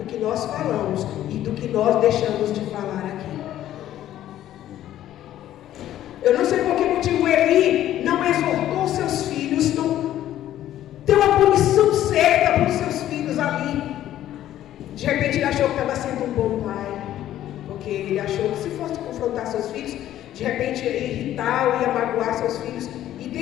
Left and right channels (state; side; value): quieter; right; 12.6 dB